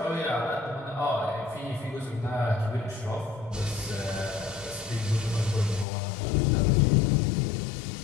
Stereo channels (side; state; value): right; drops out; at 5.9 s